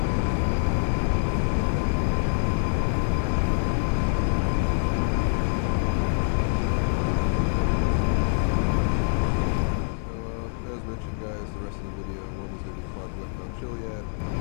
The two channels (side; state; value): right; silent; digital silence